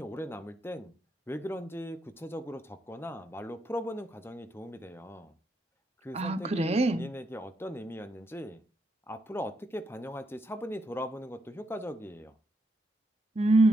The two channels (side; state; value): both; normal; correlation 0.80